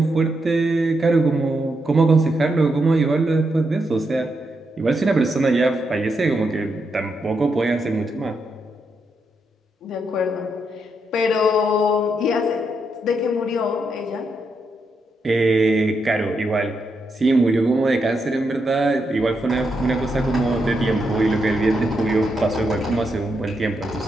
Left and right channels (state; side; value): normal; both; correlation 0.82